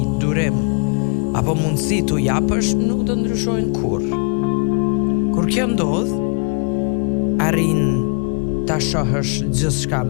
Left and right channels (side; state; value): right; quieter; 39.5 dB